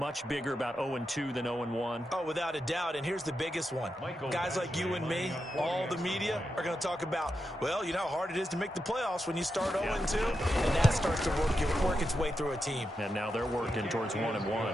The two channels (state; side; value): normal; both; correlation 0.87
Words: bigger about 0-2 than 0-1? Oh, without a doubt, and here's the biggest one. Guys like you and me, all the media, are going to talk about, well, you know how hard it is to make the playoffs when you start 0-2, and that starts to work its way through a team. And now they're working towards